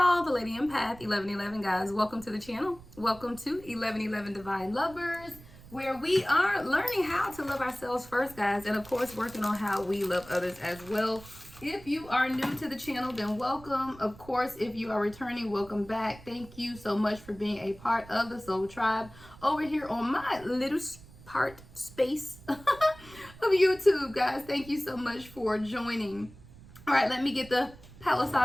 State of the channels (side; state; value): right; noise; rumble, 20 dB below the sound